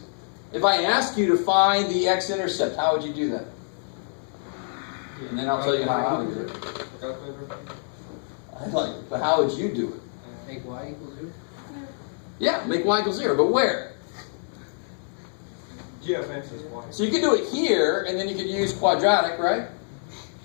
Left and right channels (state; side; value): silent; right; 61 dB below the other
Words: If I ask you to find the X-intercept, how would you do that? And then I'll tell you how I would do it. I'd like it, but how would you do it? Make y equals 0? Yeah, make y equals 0, but where? G of x is y. So you could do it here, and then you could use quadratic, right?